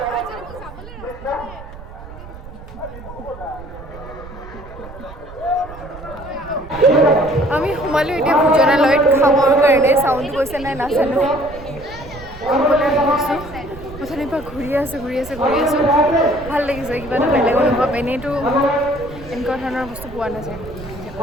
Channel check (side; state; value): right; noise; rumble, 15 dB below the sound